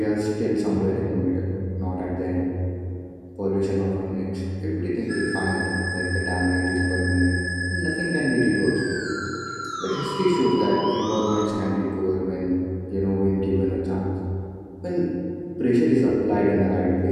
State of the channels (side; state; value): both; identical; correlation 1.00